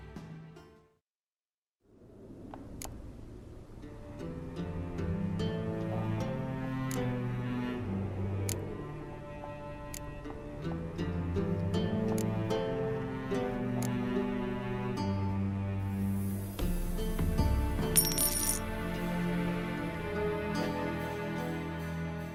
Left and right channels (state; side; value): identical; both; correlation 1.00